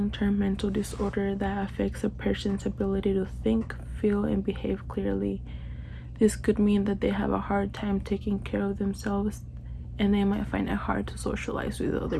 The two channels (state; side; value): identical; both; correlation 1.00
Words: mental disorder that affects a person's ability to think, feel, and behave clearly. This could mean that they have a hard time taking care of themselves and they might find it hard to socialize with other